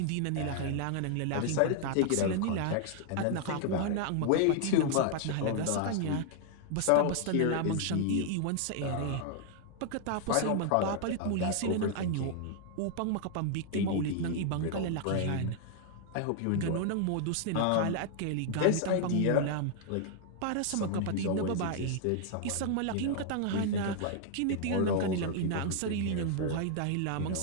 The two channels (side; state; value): both; different; correlation 0.00